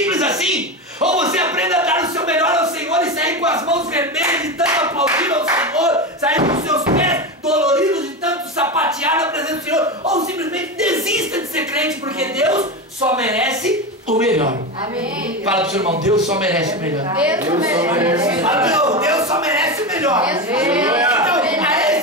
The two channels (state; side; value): normal; both; correlation 0.19